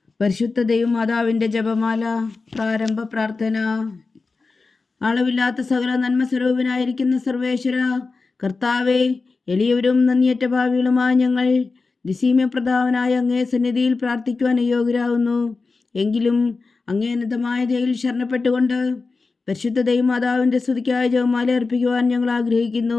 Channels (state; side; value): quieter; right; 4.1 dB